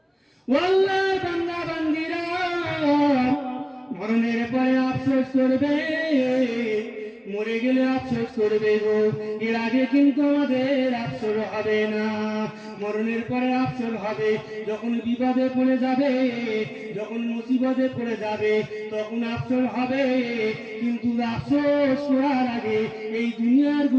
আল্লাহর বান্দা বান্দীরা, মরণের পরে আফসোস করবে, মরে গেলে আফসোস করবে গো, এর আগে কিন্তু আমাদের আফসোস হবে না। মরণের পরে আফসোস হবে যখন বিপদে পড়ে যাবে, যখন মুসিবতে পড়ে যাবে, তখন আফসোস হবে। কিন্তু আফসোস করার আগে এই দুনিয়ার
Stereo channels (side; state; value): both; identical; correlation 1.00